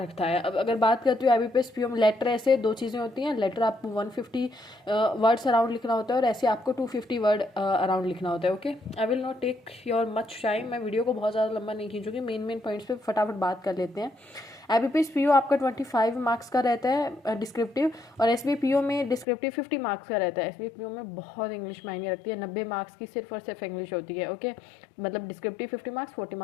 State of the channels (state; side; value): drops out; right; at 19.2 s